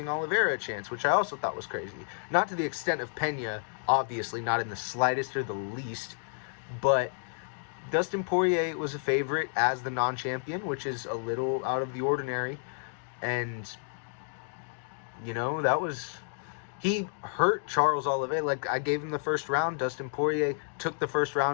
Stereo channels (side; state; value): right; silent; digital silence